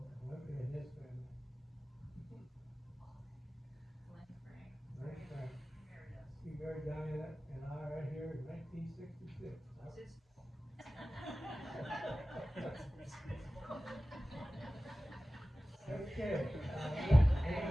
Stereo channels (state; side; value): normal; both; correlation 0.96